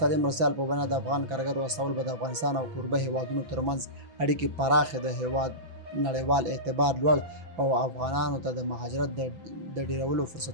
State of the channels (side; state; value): left; late; 6.0 ms